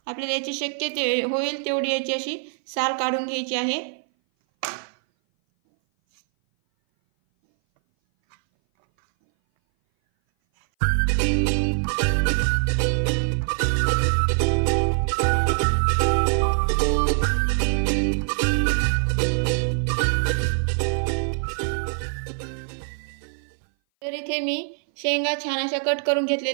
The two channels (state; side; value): silent; left; 59 dB below the other